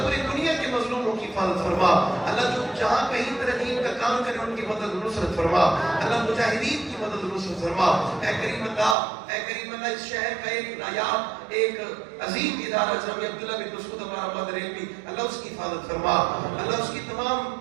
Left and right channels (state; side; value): drops out; left; at 9.0 s